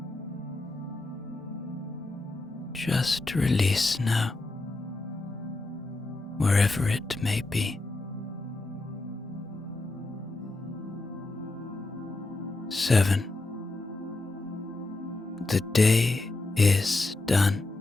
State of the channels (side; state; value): right; quieter; 3.0 dB